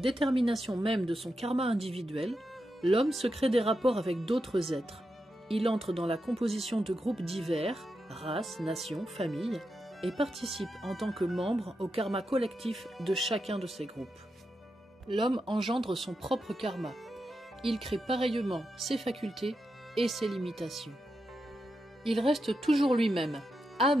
même de son karma individuel, l'homme se crée des rapports avec d'autres êtres. Il entre dans la composition de groupes divers, races, nations, familles, et participe en tant que membre au karma collectif de chacun de ces groupes. L'homme engendre son propre karma. Il crée pareillement ses facultés et ses limitations. Il reste toujours lui-même,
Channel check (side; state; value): both; normal; correlation 0.87